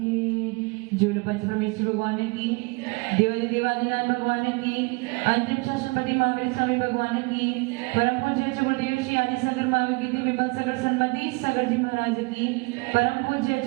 जो पंच परमेश्वर भगवान की, देवादि देवादिनाथ भगवान की, अंतिम शासनपति महावीर स्वामी भगवान की, परम पूज्य गुरुदेव श्री आदि शंकर महावीर की, विमल सागर सन्मति सागर जी महाराज की, परम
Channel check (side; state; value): left; quieter; 28.1 dB